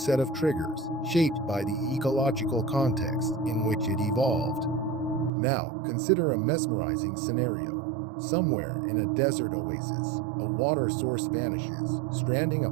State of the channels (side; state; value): left; drops out; at 5.3 s